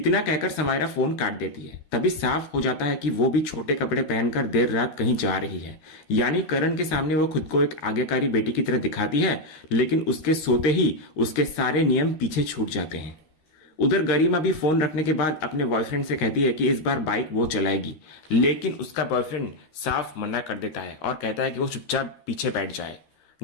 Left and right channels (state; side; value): late; right; 13 ms